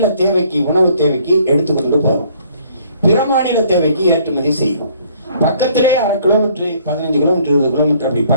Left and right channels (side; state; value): both; inverted; correlation -0.61